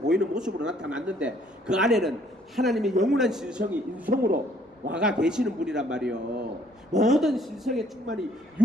모습으로 나타났는데 그 안에는 하나님의 영원한 신성이 인성으로 와가 계시는 분이란 말이요. 모든 신성의 충만이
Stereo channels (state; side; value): normal; both; correlation 0.62